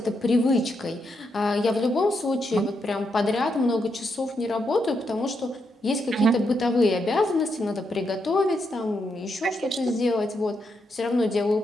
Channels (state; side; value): normal; both; correlation 0.81